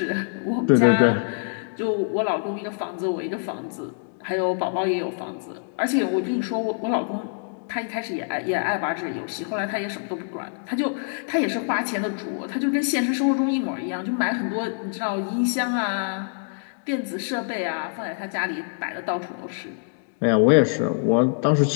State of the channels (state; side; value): silent; right; digital silence